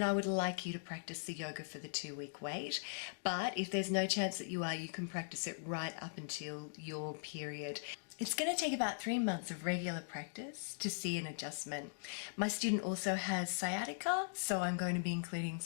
I would like you to practice the yoga for the 2-week wait. But if there's no chance that you are, you can practice it right up until your period. It's going to take about 3 months of regular practice to see an adjustment. My student also has sciatica, so I'm going to be including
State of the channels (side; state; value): right; silent; digital silence